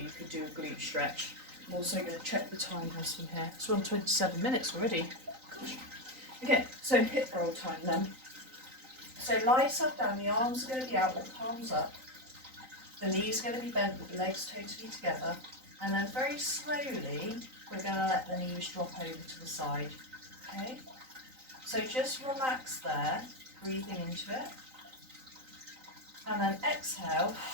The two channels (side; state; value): left; late; 3.9 ms